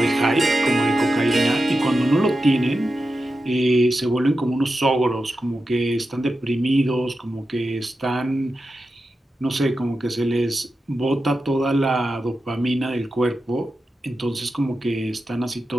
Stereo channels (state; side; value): normal; both; correlation 0.91